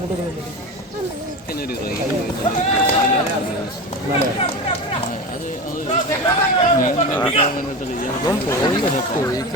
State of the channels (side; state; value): both; normal; correlation 0.25